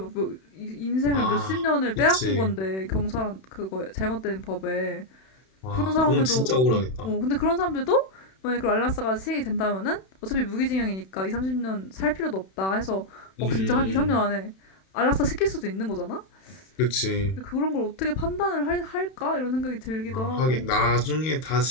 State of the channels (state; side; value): late; right; 31 ms